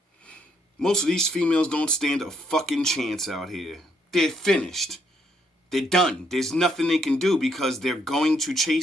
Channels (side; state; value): both; normal; correlation 0.72